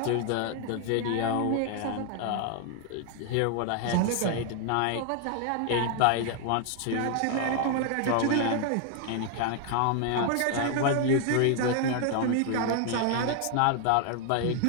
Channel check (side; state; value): both; different; correlation 0.00